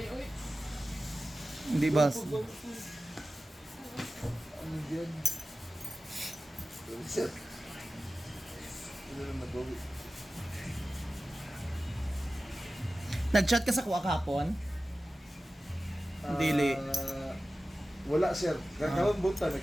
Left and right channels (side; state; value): both; normal; correlation 0.95